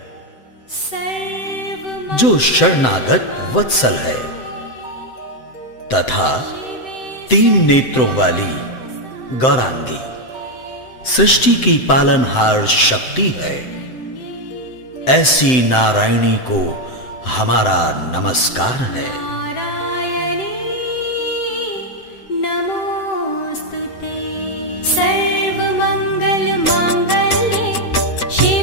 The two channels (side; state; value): right; late; 7.8 ms